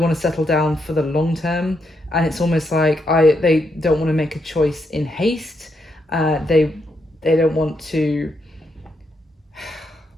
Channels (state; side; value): normal; both; correlation 0.80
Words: to settle down for the long term, and it's almost like they don't want to make a choice in haste. They don't want to